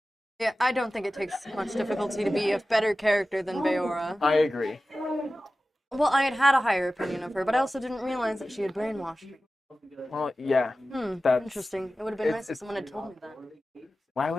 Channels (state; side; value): normal; both; correlation 0.95